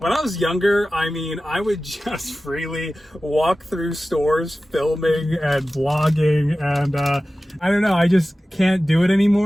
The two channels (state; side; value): normal; both; correlation 0.95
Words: I was younger, I mean, I would just freely walk through stores filming and vlogging, and I don't know, I just can't do it